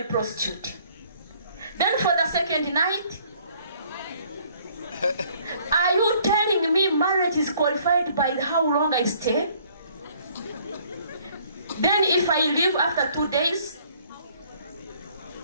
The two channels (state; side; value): inverted; both; correlation -0.60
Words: prostitute. Then for the second night, are you telling me marriage is qualified by how long I stay? Then if I leave after 2 days,